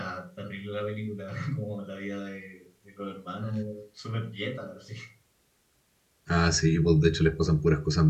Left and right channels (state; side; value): identical; both; correlation 1.00